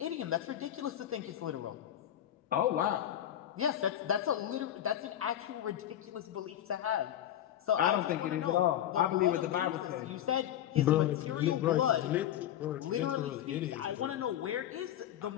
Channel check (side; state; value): right; quieter; 11.4 dB